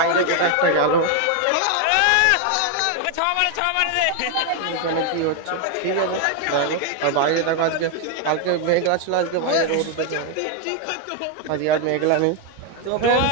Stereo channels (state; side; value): different; both; correlation 0.01